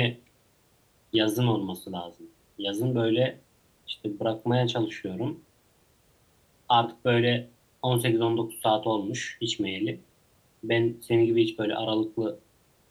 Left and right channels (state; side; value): identical; both; correlation 1.00